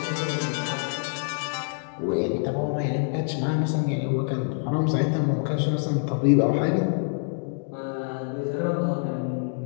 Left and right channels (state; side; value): silent; right; digital silence